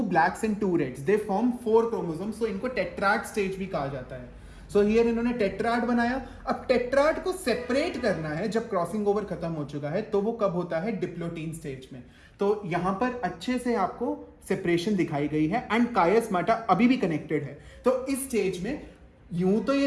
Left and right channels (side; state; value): both; identical; correlation 1.00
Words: blacks and 2 reds, they form 4 chromosomes, so इनको टेट्राड स्टेज भी कहा जाता है। सो हियर इन्होंने टेट्राड बनाया। अब टेट्राड को सेपरेट करना है जब क्रॉसिंग ओवर खत्म हो चुका है, तो वो कब होता है, डिप्लोटीन स्टेज में। तो यहां पर अच्छे से आपको सेपरेशन दिखाई गई है एंड कायस्माटा अभी भी कनेक्टेड है। तो इस स्टेज में यूं तो